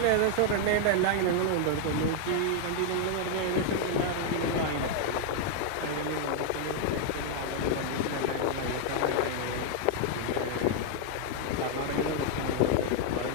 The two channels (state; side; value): different; both; correlation 0.00